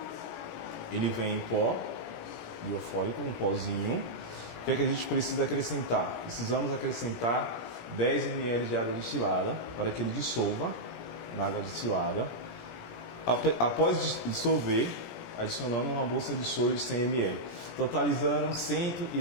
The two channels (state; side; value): late; right; 17 ms